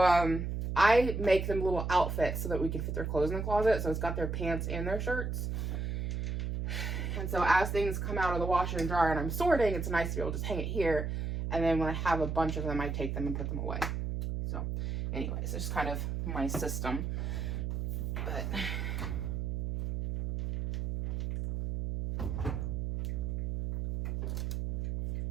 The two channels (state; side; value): noise; right; hum, 2 dB below the sound